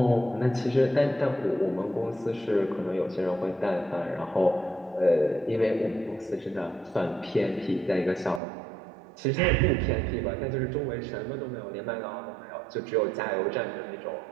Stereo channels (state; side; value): drops out; left; at 8.4 s